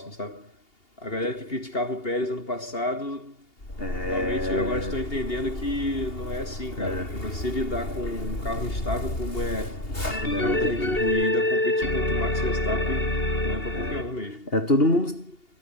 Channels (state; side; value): late; right; 2.8 ms